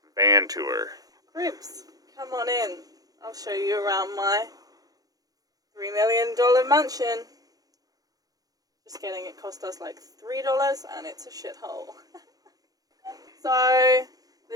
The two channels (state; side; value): late; left; 0.18 ms